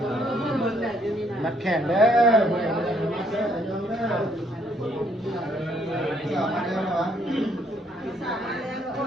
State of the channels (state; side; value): normal; both; correlation 0.68